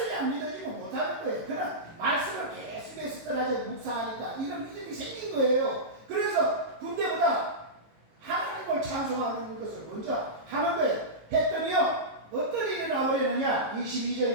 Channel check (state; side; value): late; left; 18 ms